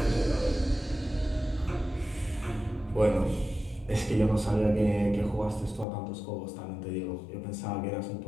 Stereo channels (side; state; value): right; drops out; at 5.9 s